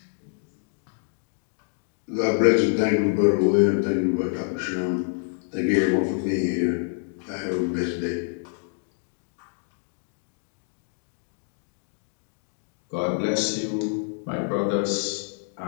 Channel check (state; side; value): silent; right; 60 dB below the other